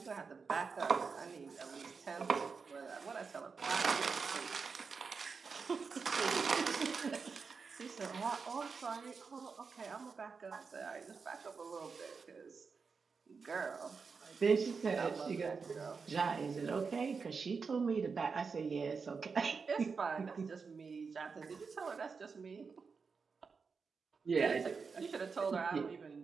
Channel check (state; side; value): quieter; left; 5.1 dB